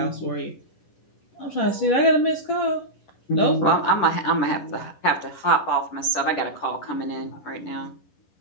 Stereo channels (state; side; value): late; right; 11 ms